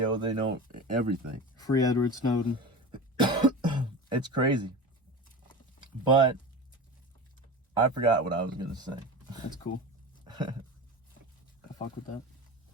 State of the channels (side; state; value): both; normal; correlation 0.30